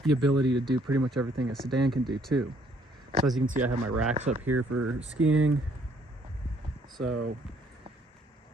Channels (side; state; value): both; normal; correlation 0.65